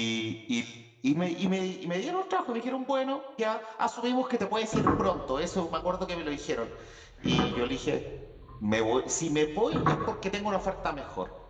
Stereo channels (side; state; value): both; identical; correlation 1.00